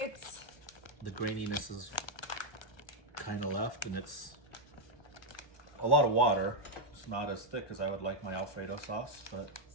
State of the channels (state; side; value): late; right; 1.3 ms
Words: It's. the graininess is kind of left, and it's a lot of water. It's not as thick as I would like my Alfredo sauce, but